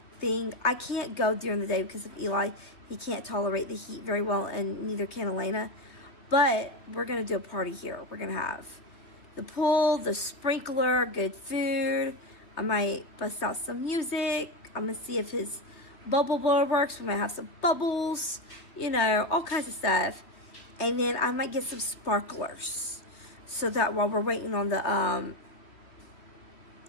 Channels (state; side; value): late; right; 3.2 ms